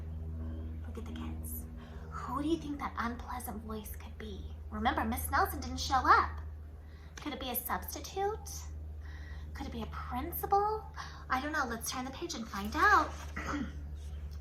Look at the kids. Who do you think that unpleasant voice could be? Remember, Miss Nelson didn't show up. Could it be a substitute? Could it be a principal? I don't know. Let's turn the page and find out.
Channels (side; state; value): both; identical; correlation 1.00